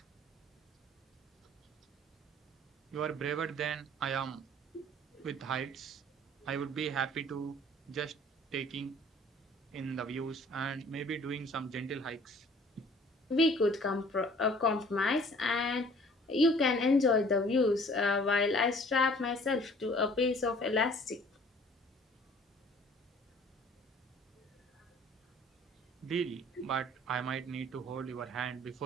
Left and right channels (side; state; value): both; normal; correlation 0.53